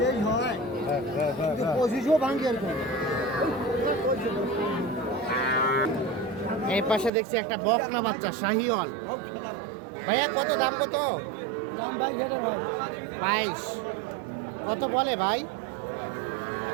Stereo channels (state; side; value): drops out; left; at 7.1 s